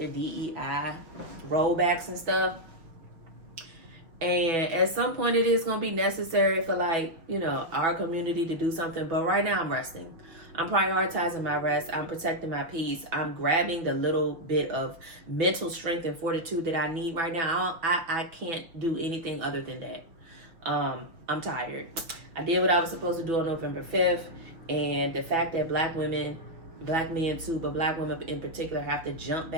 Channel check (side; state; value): left; late; 5.8 ms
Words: DEI rollbacks and stuff. And at some point it is going to be necessary for, like, you know, our community to do something. But right now I'm resting. I'm prioritizing my rest. I'm protecting my peace. I'm grabbing the little bit of mental strength and fortitude that I need right now. I can't do anything other than that. I'm tired. I did what I was supposed to do on November 5th. And the fact that black women, black men too, but black women in particular, have to jump